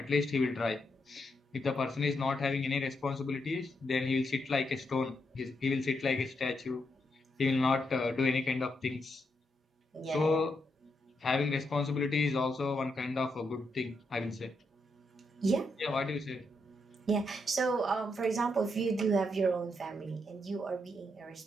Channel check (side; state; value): both; normal; correlation 0.81